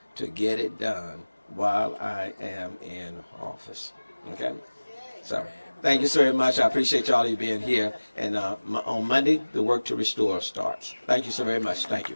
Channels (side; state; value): both; inverted; correlation -1.00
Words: to get it done while I am in office. Okay? So, thank you so very much. I appreciate y'all being here. And on Monday, the work to restore starts. Thank you so very much. Thank you.